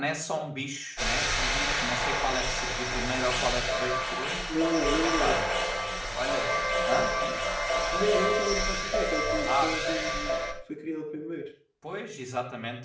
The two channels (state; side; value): identical; both; correlation 1.00